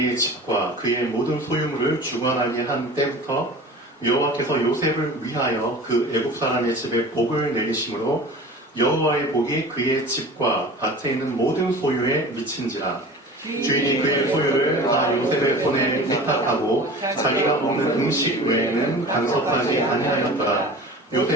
집과 그의 모든 소유물을 주관하게 한 때부터 여호와께서 요셉을 위하여 그 애굽 사람의 집에 복을 내리심으로 여호와의 복이 그의 집과 밭에 있는 모든 소유에 미친지라. 주인이 그의 소유를 다 요셉의 손에 위탁하고 자기가 먹는 음식 외에는 간섭하지 아니하였더라.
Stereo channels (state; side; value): normal; both; correlation 0.38